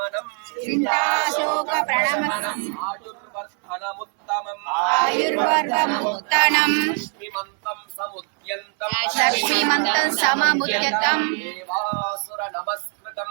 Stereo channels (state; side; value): quieter; left; 39.9 dB